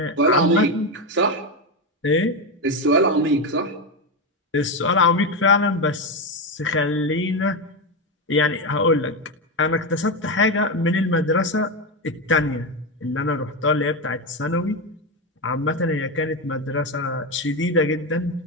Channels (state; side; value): normal; both; correlation 0.12